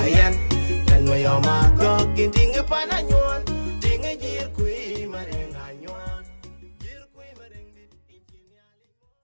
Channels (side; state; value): both; inverted; correlation -1.00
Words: Yan Mayom Agok Indinge pananyon Dinge Jerkuei marenganyon Jerkuei marengdit inchini alimoy